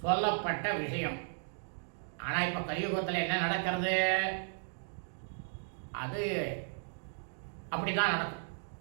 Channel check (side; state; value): left; silent; digital silence